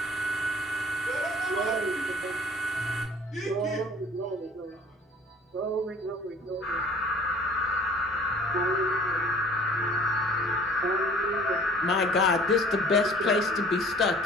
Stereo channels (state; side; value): normal; both; correlation 0.51